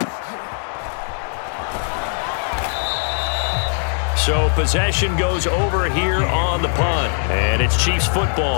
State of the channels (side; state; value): right; silent; 56 dB below the other